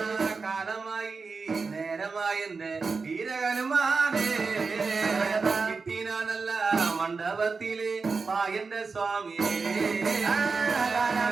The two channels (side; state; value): left; quieter; 4.6 dB